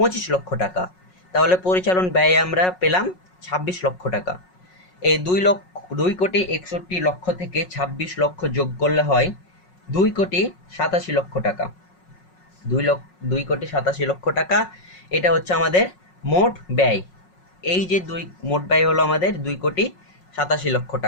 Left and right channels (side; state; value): right; late; 5.5 ms